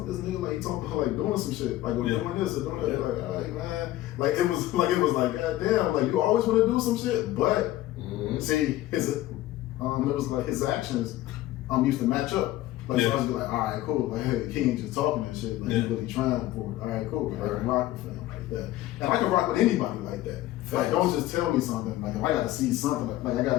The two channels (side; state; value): right; quieter; 15.4 dB